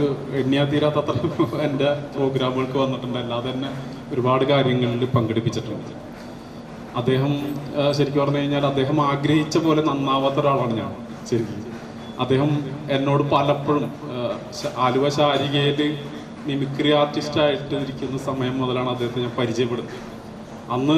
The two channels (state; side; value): identical; both; correlation 1.00